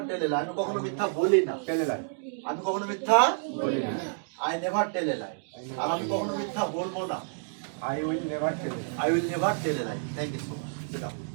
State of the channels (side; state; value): left; silent; digital silence